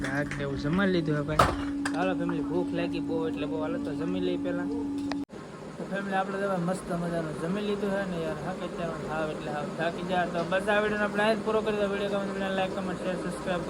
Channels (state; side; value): identical; both; correlation 1.00